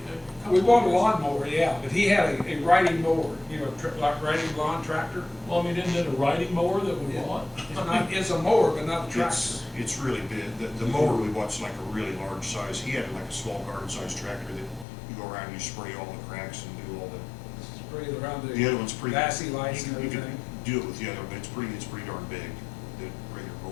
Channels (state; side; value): drops out; right; at 14.9 s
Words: We bought a lawnmower, yeah, but he had a riding mower, you know, like riding lawn tractor. Well, I mean, isn't it a riding mower that we bought? It's a mower, but not a tractor. It's really big. The mower we bouught's like a really large size. He had like a small garden size tractor that you go around and you spray all the cracks and do all the. Spray it around The other one's pretty. Vassy lights and You can everything. do it with the other, but it's pretty darn big, the regular